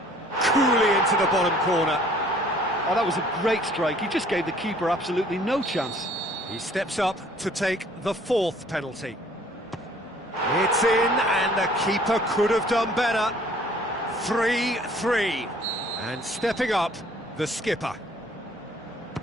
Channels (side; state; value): both; normal; correlation 0.56